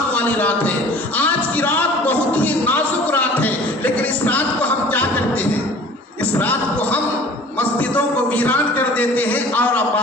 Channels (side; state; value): both; normal; correlation 0.46